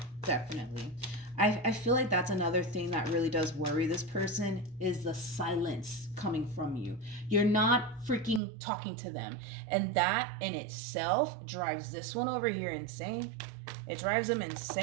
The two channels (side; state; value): left; drops out; at 8.4 s